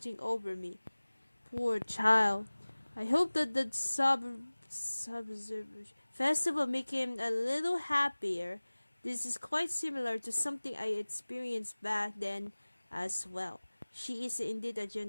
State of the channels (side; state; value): both; inverted; correlation -1.00